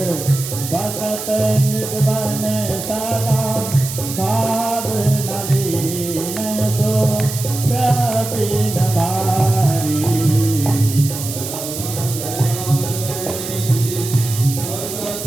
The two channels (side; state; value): right; noise; hiss, 8 dB below the sound